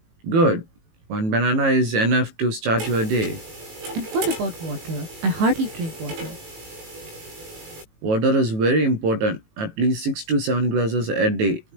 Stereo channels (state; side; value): late; left; 18 ms